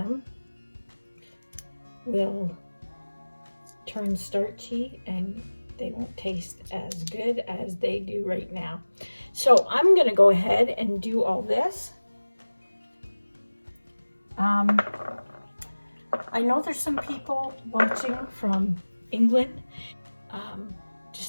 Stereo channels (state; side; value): inverted; both; correlation -1.00